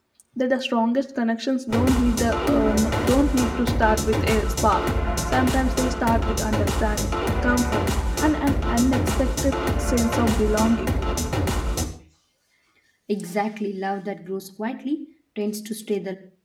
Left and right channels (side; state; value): both; identical; correlation 1.00